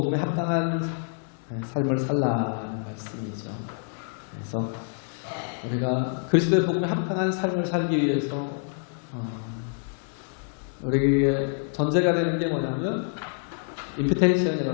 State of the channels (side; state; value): right; silent; 60 dB below the other